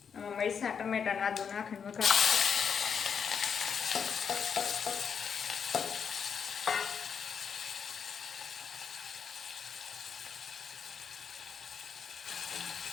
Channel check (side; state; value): right; quieter; 6.8 dB